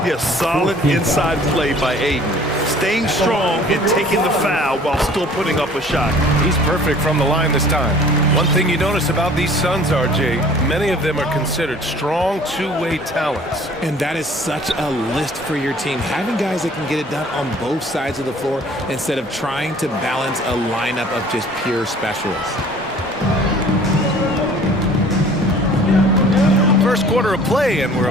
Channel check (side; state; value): both; normal; correlation 0.51